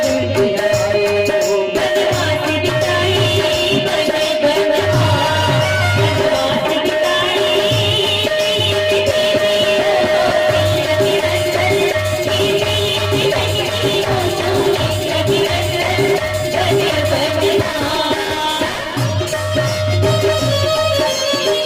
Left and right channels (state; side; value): identical; both; correlation 1.00